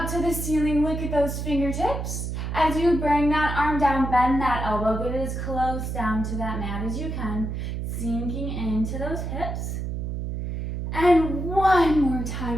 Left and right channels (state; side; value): noise; right; hum, 4 dB below the sound